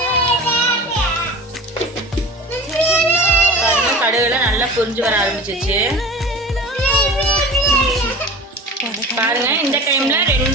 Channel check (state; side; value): normal; both; correlation 0.37